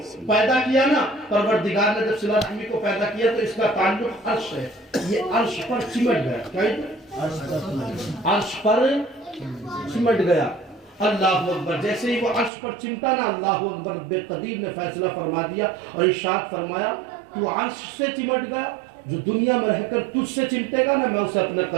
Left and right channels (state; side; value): drops out; left; at 12.5 s